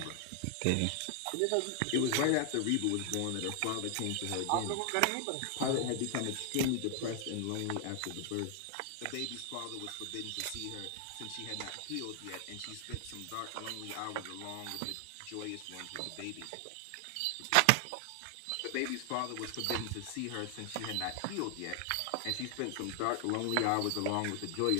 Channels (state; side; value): different; both; correlation 0.00